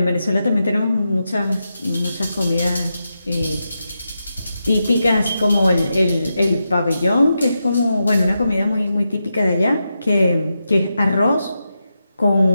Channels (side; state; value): both; inverted; correlation -0.88